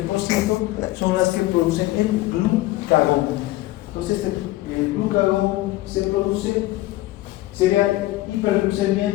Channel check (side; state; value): right; quieter; 17.7 dB